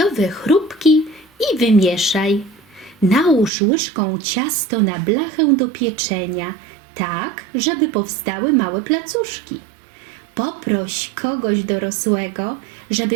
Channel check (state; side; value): drops out; left; at 3.5 s